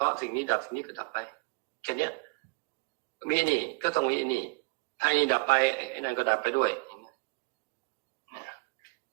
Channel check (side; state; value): left; quieter; 28.4 dB